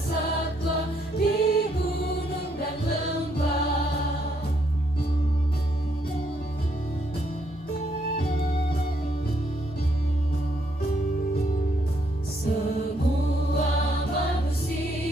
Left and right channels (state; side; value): normal; both; correlation 0.73